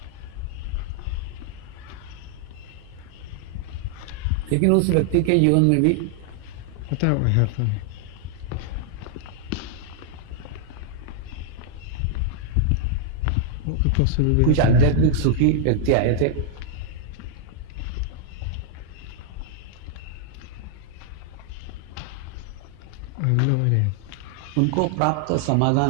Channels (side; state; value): both; different; correlation -0.01